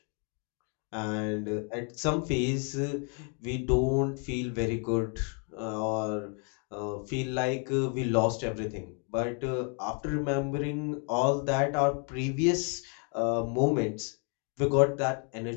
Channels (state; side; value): quieter; right; 38.8 dB